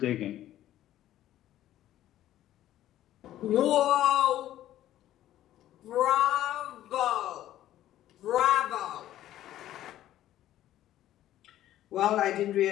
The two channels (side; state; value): right; quieter; 13.1 dB